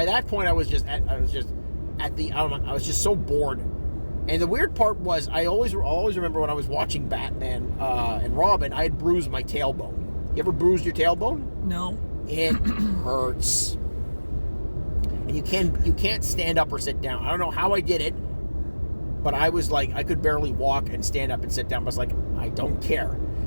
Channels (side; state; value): both; inverted; correlation -1.00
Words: that point, I was just so bored. And the weird part was, I always remember when I was watching Batman and Robin, I had bruised my tailbone. You ever bruised your tailbone? No. It hurts. And you can't stand up or sit down. I don't know how I did it, but I was I could barely walk and stand up and sit down. I was like, I don't care.